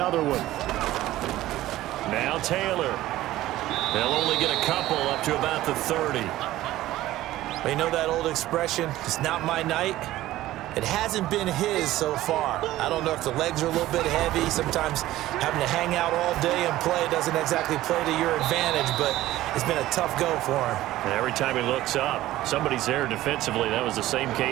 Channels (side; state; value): left; quieter; 15.4 dB